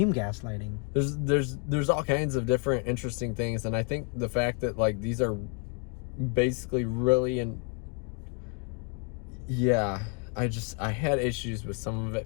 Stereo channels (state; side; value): quieter; right; 37.7 dB